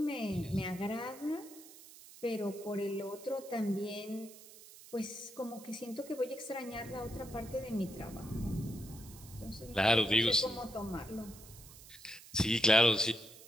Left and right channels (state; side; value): noise; right; hiss, 18 dB below the sound